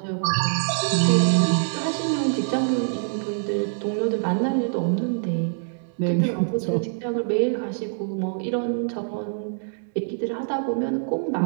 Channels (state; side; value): silent; left; digital silence